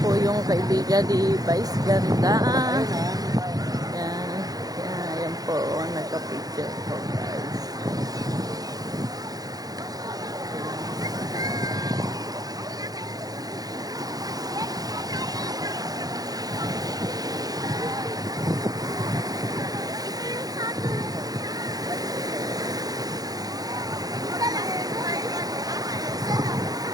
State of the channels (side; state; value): left; late; 0.18 ms